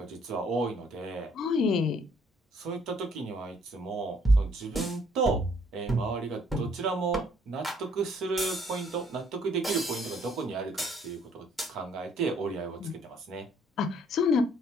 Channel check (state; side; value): normal; both; correlation 0.64